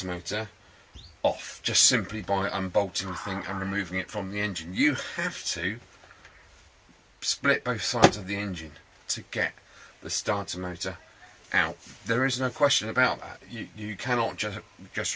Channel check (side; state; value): both; identical; correlation 1.00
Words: motor off just simply by unbolting the thing and removing it from the engine. You have to split both sides of the engine to get the starter motor out. There is no question about that. You cannot just